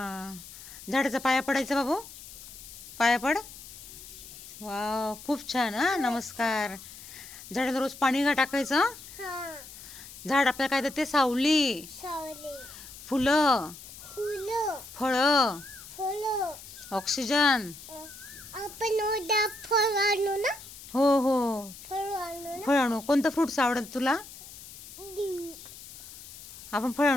झाडाचा पाया पडायचा बाबू. पाया पड. वाव खूप छान. हा नमस्कार. झाडाला रोज पाणी टाकायचं. झाड आपल्याला काय देते. सावली, फुलं, फळं, ऑक्सिजन. हो हो फळ आणू. कोणतं फ्रुट्स आवडत तुला. आपण फळ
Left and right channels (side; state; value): left; noise; hiss, 16 dB below the sound